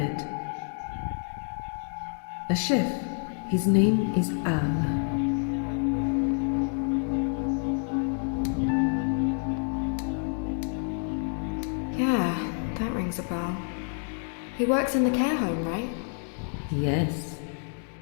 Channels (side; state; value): right; silent; 56 dB below the other